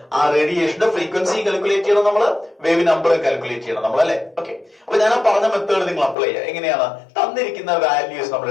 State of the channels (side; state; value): right; drops out; at 6.2 s